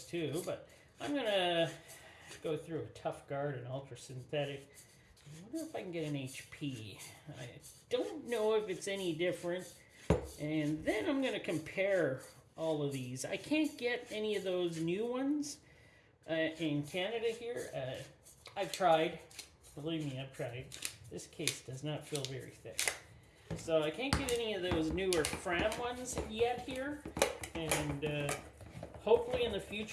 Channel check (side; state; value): both; identical; correlation 1.00